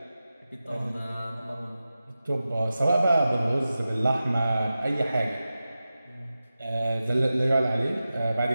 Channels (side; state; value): both; inverted; correlation -0.94